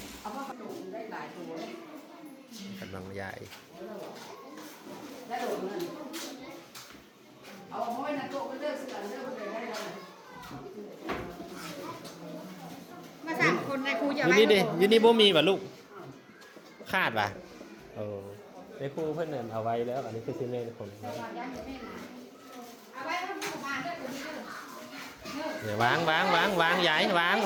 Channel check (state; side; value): identical; both; correlation 1.00